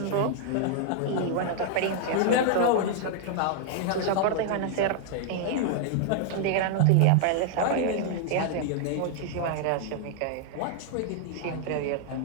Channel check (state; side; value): different; both; correlation 0.00